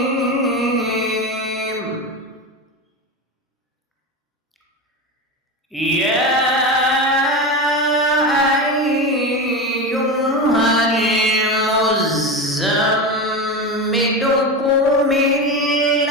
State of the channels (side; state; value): both; normal; correlation 0.21